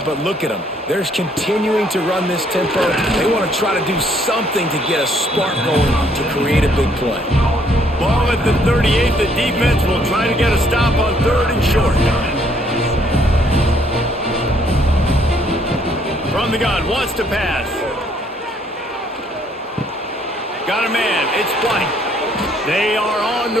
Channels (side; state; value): both; normal; correlation 0.66